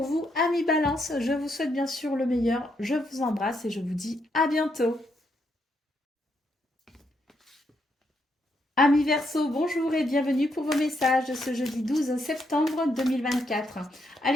vous, amis Balance. Je vous souhaite bien sûr le meilleur. Je vous embrasse et je vous dis à bientôt. Amis Verseau, bonjour et bienvenue pour vos messages de ce jeudi 12 septembre 2024.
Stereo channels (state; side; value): normal; both; correlation 0.78